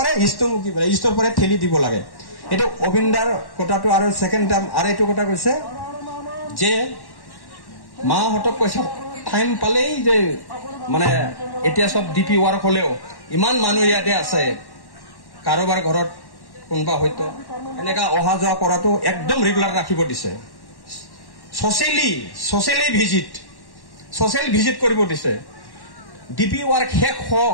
ইষ্টমুখী পাৰে, ইষ্টৰ পৰা ঠেলি দিব লাগে। এইটো অবিন্দাৰ কথাটো। আৰু ছেকেণ্ড টাইম আৰু এইটো কথা কৈছে যে মাহঁতক কৈছে টাইম পালেই যে মানে এতিয়া চব ডিপি ৱাৰ্ক হলেও ইমান মানুহ ইয়াতে আছে, কাৰোবাৰ ঘৰত কোনোবা হয়তো এনেকা অহা যোৱা কৰাটো একদম ৰেগুলাৰ ৰাখিব দিছে ছচিয়েলি ভিজিট কৰিব দিছে ডিপি ৱাৰ্ক শেষ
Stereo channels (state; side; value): late; right; 1.1 ms